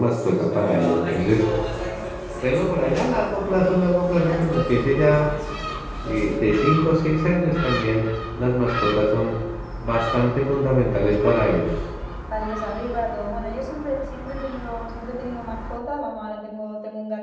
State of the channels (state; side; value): identical; both; correlation 1.00